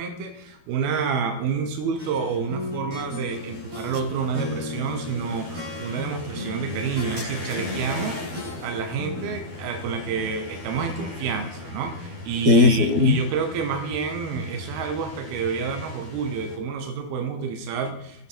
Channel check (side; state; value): left; late; 12 ms